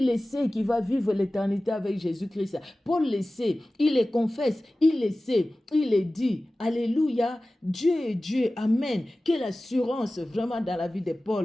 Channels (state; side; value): normal; both; correlation 0.97